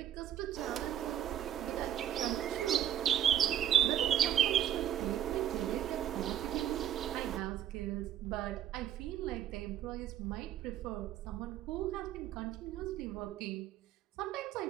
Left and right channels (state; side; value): quieter; left; 10.8 dB